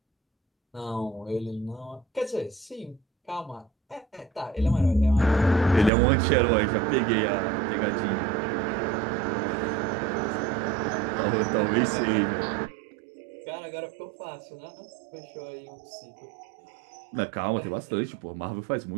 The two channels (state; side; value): drops out; left; at 5.9 s